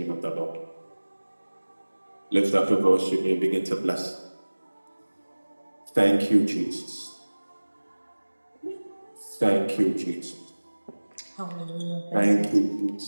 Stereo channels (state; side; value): inverted; both; correlation -1.00